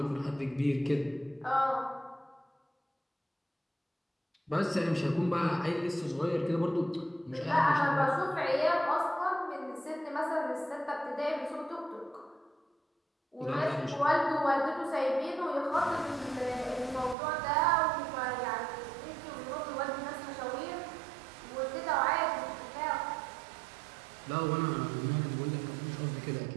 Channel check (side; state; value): left; drops out; at 17.2 s